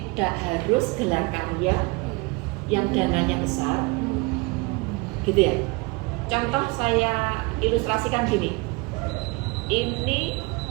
harus gelar karya yang dananya besar. Gitu ya. Contoh saya ilustrasikan gini. Ini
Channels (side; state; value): left; quieter; 26.2 dB